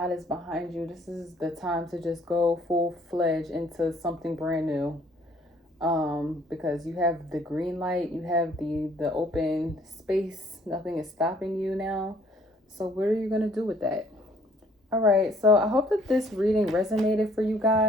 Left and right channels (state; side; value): normal; both; correlation 0.61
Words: is behind you. This is the time to just go full-fledged into something brand new. Because you have the green light, you have the open space, nothing is stopping you now. So what are you going to do with that? All right, so I hope that this reading resonated for you